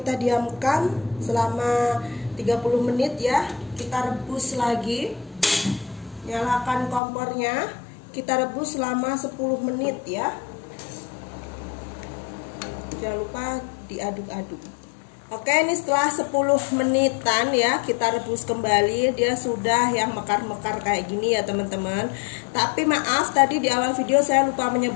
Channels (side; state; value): right; drops out; at 7.0 s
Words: diamkan selama 30 menit ya, kita rebus lagi. Nyalakan kompornya, kita rebus selama 10 menit ya. Jangan lupa diaduk-aduk. Oke, ini setelah 10 menitan ya, kita rebus kembali. Dia sudah yang mekar-mekar kayak gini ya teman-teman. Tapi maaf, tadi di awal video saya lupa